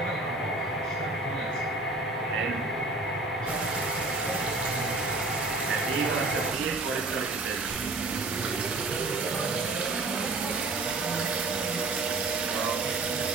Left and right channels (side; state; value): left; quieter; 3.2 dB